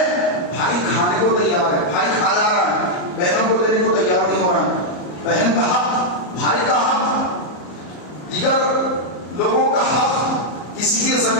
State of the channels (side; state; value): right; late; 34 ms